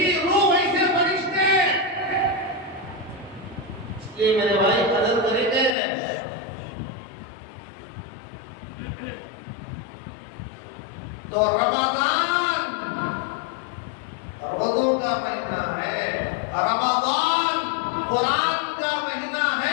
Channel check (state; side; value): drops out; right; at 5.8 s